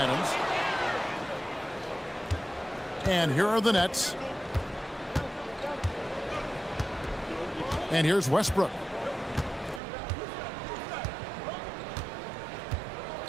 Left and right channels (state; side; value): drops out; left; at 9.8 s